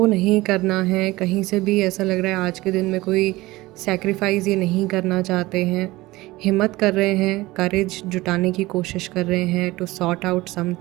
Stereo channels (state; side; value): quieter; left; 19.4 dB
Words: नहीं करना है, कहीं से भी ऐसा लग रहा है आज के दिन में कोई सेक्रीफाइस ये नहीं करना चाहते हैं। हिम्मत कर रहे हैं, करेज जुटाने की कोशिश कर रहे हैं टू सॉर्ट आउट